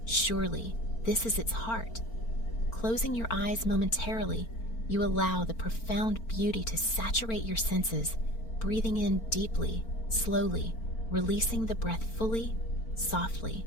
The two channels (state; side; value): late; right; 4.4 ms